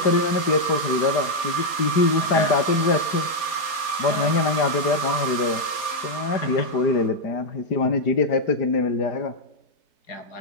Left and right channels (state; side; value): late; right; 4.2 ms